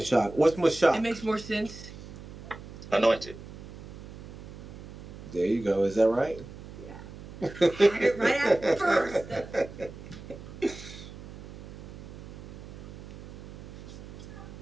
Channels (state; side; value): noise; right; hum, 14 dB below the sound